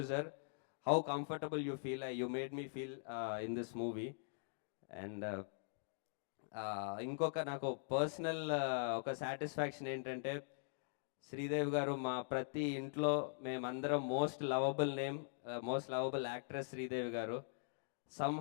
how comfortable you feel. You made me feel in this movie. And ఇంకొక నాకు personal ఒక satisfaction ఏంటంటే, శ్రీదేవి గారు మా ప్రతి ఇంట్లో మేమందరం most lovable actress Sridevi గారు.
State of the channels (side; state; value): right; silent; digital silence